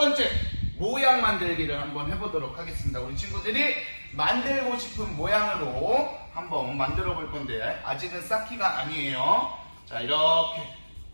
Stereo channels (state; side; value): inverted; both; correlation -1.00